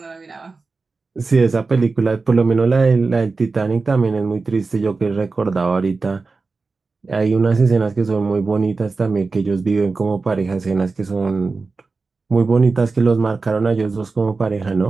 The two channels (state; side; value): quieter; left; 4.1 dB